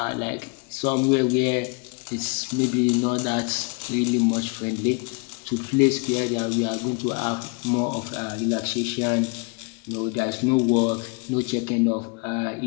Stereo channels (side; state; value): right; quieter; 33.7 dB